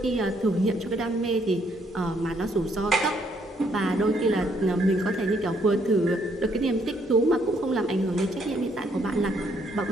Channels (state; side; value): normal; both; correlation 0.70